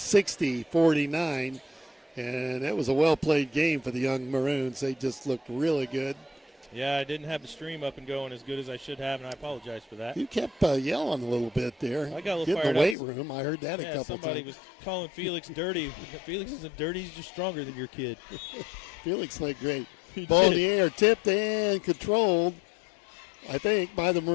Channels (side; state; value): right; drops out; at 13.0 s